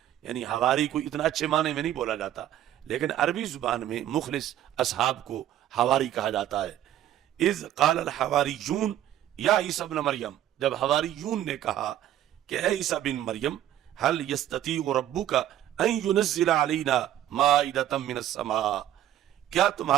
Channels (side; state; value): left; quieter; 12.1 dB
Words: یعنی حواری کو اتنا اچھے معنی میں نہیں بولا جاتا، لیکن عربی زبان میں مخلص اصحاب کو حواری کہا جاتا ہے۔ اذ قال الحواریون یا عیسیٰ ابن مریم، جب حواریون نے کہا کہ اے عیسیٰ بن مریم هل یستطیع ربک ان ینزل علینا مائدۃ من السماء، کیا